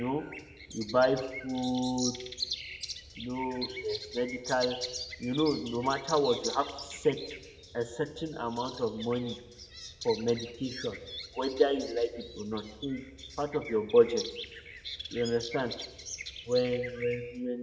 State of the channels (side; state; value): both; identical; correlation 1.00